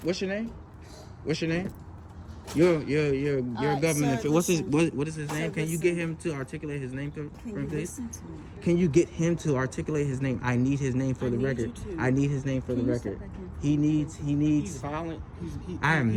You're a government. Sir, what is his name? Can you get him to articulate his name, please? Listen to me? Can you get him to articulate his name? I need his name for the record. I need his name for the record. He needs. He's violent. I am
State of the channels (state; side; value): identical; both; correlation 1.00